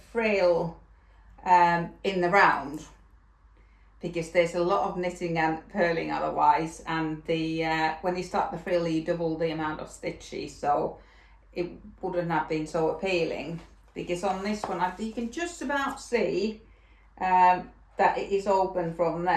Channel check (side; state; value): both; identical; correlation 1.00